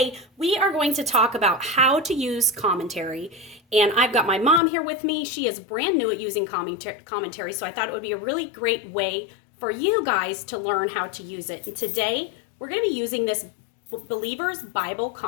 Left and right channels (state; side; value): drops out; right; at 4.6 s